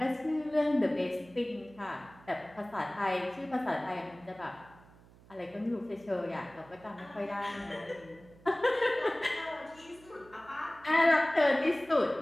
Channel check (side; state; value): right; noise; hum, 24 dB below the sound